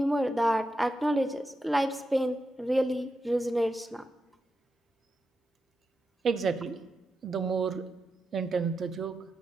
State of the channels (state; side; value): normal; both; correlation 0.88